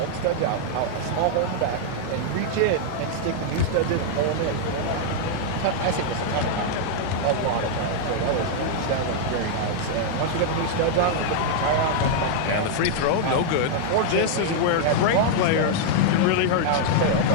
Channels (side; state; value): both; different; correlation -0.01